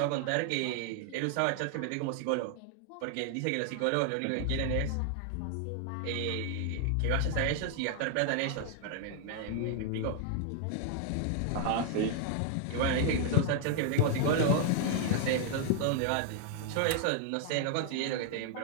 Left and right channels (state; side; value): different; both; correlation 0.00